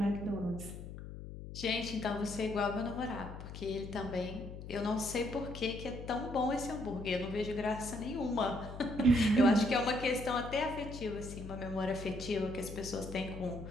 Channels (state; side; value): noise; left; hum, 10 dB below the sound